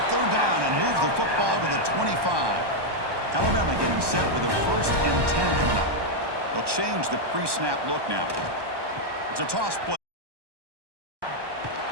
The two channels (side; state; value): left; late; 1.1 ms